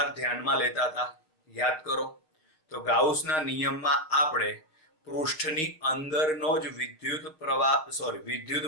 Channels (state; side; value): late; right; 6.3 ms